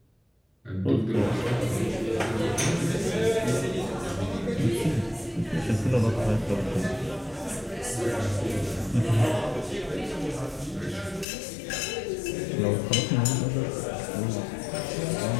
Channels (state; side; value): drops out; right; at 11.2 s